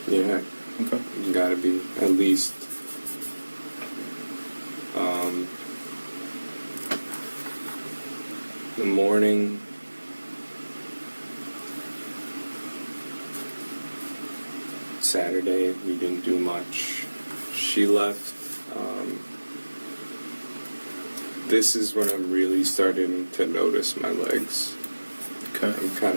Yeah. Okay. You gotta be at least. The morning. Saturday, we didn't do much. She left. This is when I'm really starting to notice my legs. Okay. I'm kind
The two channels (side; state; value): both; inverted; correlation -1.00